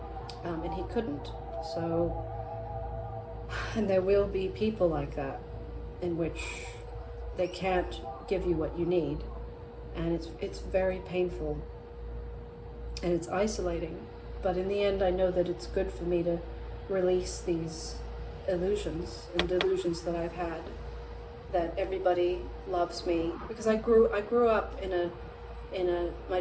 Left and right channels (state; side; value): identical; both; correlation 1.00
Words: And he couldn't. So, and there will be people like that, in which they can't give you what you need. And it's very painful. And it's isolating. But in the end, I know that it's good for me to release these illusions and delusions that I've had, that everybody loves me, because I grew up my